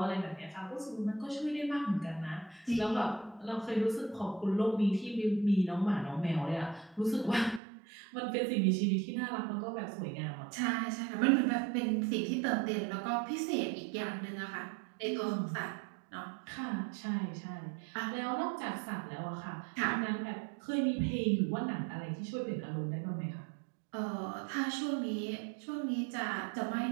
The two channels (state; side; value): drops out; left; at 7.6 s